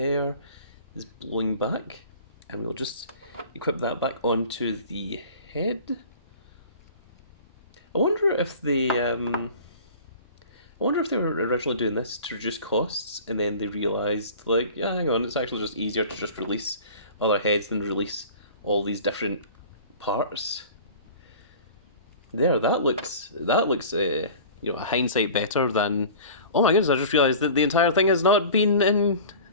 is blowing back, and we'll just equip that back onto the head. I wonder if they were originally doing this to reduce costs, and then they realised, like, yeah, hang on, it's actually just easier to just release other heads than release all these different parts. There, you know, hindsight better than. Oh my goodness! I just realised that the entire thing has not been in,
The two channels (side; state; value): both; inverted; correlation -0.41